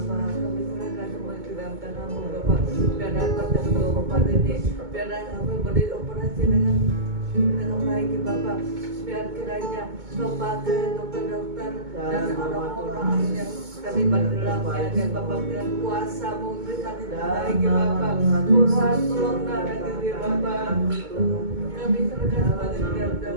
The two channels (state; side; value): late; left; 2.2 ms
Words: kami serahkan semua ke dalam tangan-Mu Bapak. Biar dapat tempat ini, biar kami boleh operasi dengan baik ya Bapak. Biar kiranya Kau pakai dokter-dokter dan orang-orang yang terlibat dalamnya dan Bapak dengan kuasa-Mu berikan yang terbaik ya Bapak. Tuhan tolong darahkan dia Bapak. Kami serahkan semuanya ke dalam